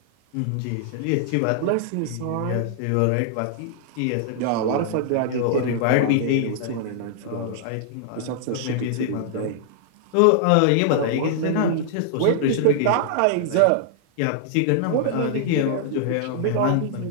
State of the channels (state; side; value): different; both; correlation -0.01